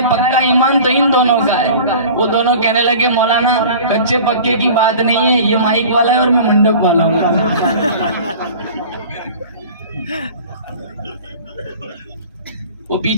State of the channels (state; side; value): inverted; both; correlation -0.41